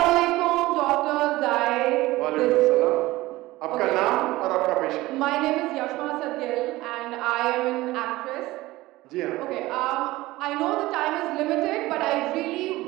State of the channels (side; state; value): left; quieter; 18.5 dB